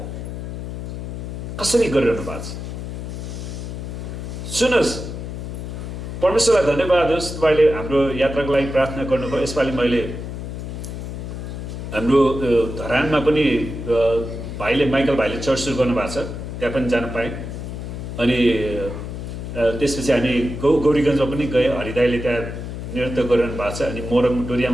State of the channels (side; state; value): left; noise; hum, 7 dB below the sound